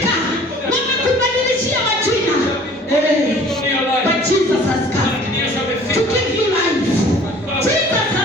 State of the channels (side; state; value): both; normal; correlation 0.50